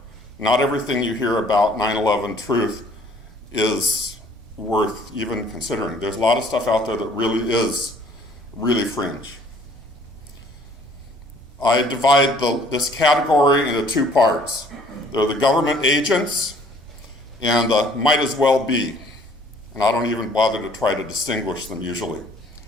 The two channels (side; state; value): both; normal; correlation 0.57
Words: Not everything you hear about 9/11 truth is worth even considering. There's a lot of stuff out there that really is really fringe. I divide this category into two parts. There are the government agents and the might as well be. And I don't even bother to try to distinguish them usually.